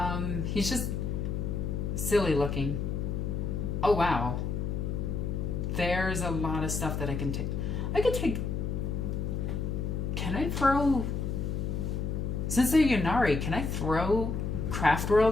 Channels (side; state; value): left; noise; hum, 1 dB below the sound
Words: He's just silly looking. Oh, wow. There's a lot of stuff that I can take. I could take... Can I throw... Since they're Yunari, can I throw Craft